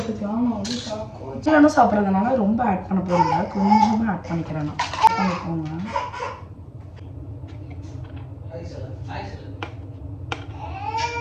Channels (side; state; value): both; identical; correlation 1.00